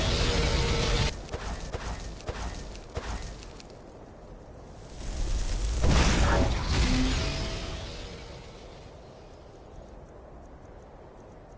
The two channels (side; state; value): both; identical; correlation 1.00